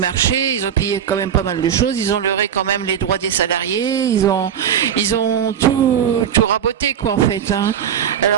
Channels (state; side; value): quieter; left; 8.9 dB